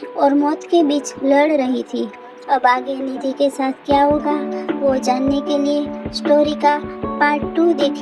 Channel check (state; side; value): identical; both; correlation 1.00